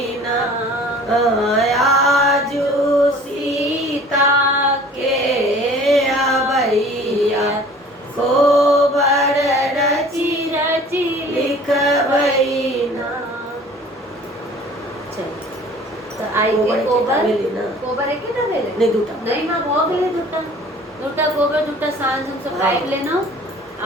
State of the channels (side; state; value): both; normal; correlation 0.48